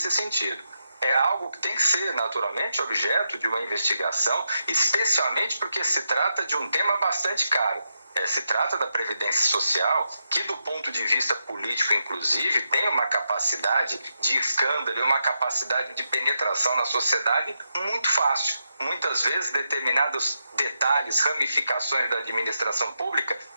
sentido. É algo que tem que ser, naturalmente, objeto de uma investigação, especialmente porque se trata de um tema bastante caro. Se trata da Previdência Social, que do ponto de vista político, inclusive, tem uma capacidade de escândalo e uma capacidade de penetração na sociedade muito fácil. Muitas vezes, determinados detalhes, ramificações da administração pública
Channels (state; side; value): inverted; both; correlation -0.84